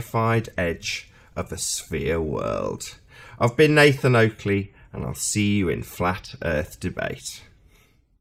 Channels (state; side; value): identical; both; correlation 1.00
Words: edge of a sphere world. I've been Nathan Oakley, and I'll see you in Flat Earth Debate.